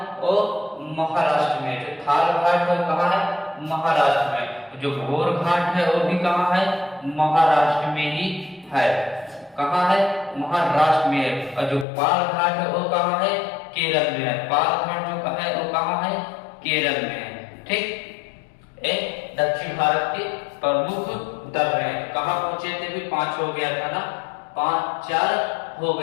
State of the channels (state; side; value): drops out; right; at 11.9 s